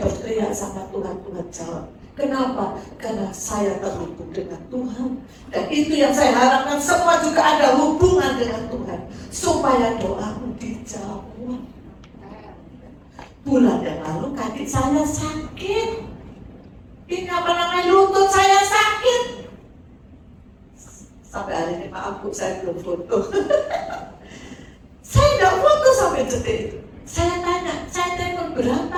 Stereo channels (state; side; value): identical; both; correlation 1.00